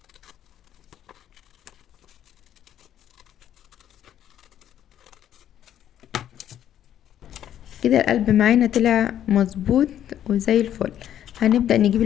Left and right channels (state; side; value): quieter; right; 10.7 dB